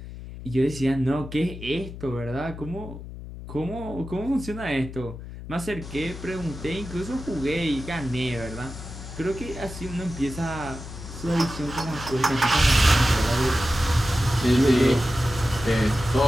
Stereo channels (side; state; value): left; noise; hum, 12 dB below the sound